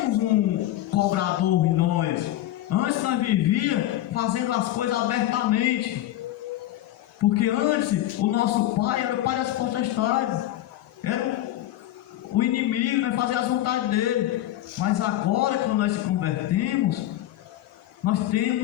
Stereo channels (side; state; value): right; quieter; 14.0 dB